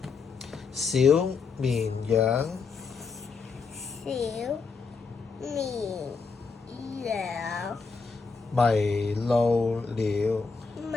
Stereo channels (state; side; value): quieter; right; 4.9 dB